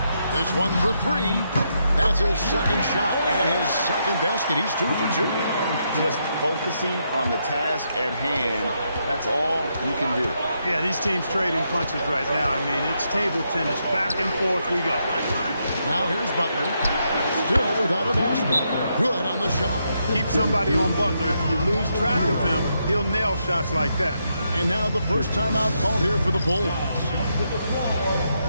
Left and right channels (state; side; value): inverted; both; correlation -0.80